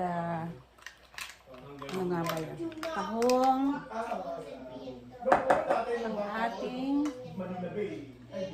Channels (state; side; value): identical; both; correlation 1.00